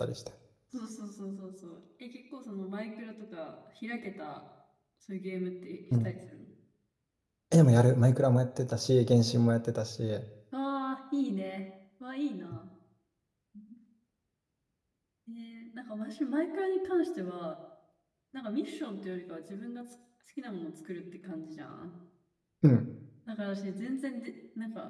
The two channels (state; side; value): identical; both; correlation 1.00